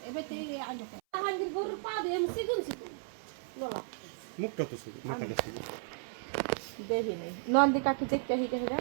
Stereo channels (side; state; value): left; silent; 55 dB below the other